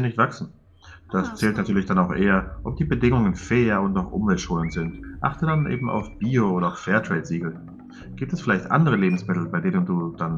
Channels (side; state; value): both; identical; correlation 1.00